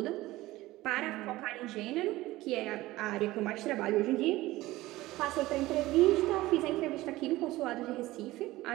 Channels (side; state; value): left; quieter; 17.9 dB